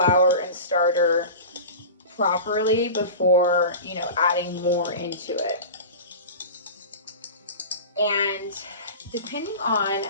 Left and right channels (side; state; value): both; inverted; correlation -0.32